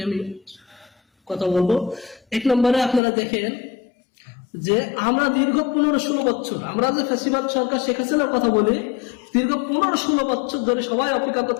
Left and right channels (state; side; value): drops out; right; at 3.0 s